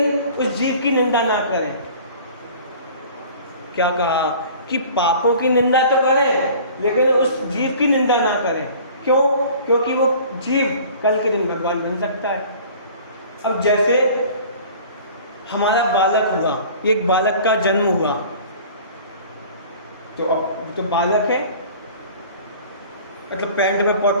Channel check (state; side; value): inverted; both; correlation -0.46